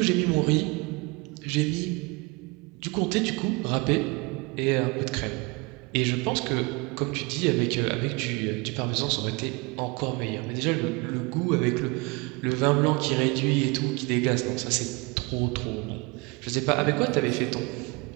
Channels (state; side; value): quieter; left; 27.2 dB